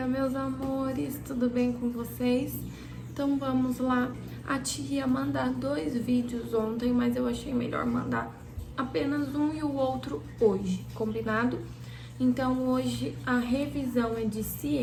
meus amores, tudo bem com vocês? Então vamos lá. A tia ia mandar 2 vídeos ontem, mas eu achei melhor mandar apenas um e o outro hoje, combinado? Então hoje a revisão é de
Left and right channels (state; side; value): identical; both; correlation 1.00